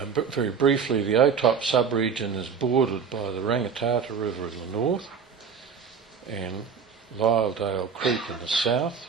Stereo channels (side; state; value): left; quieter; 6.4 dB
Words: briefly, the OTOP sub-region is bordered by the Rangitata River in the north and Lyledale Creek in the south.